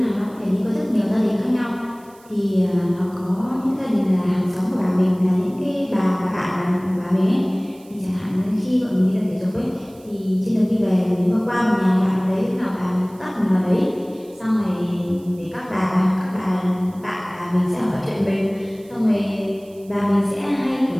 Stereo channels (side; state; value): right; noise; hiss, 27 dB below the sound